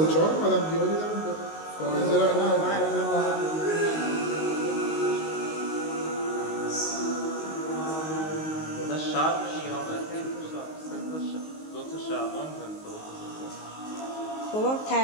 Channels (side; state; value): right; late; 19 ms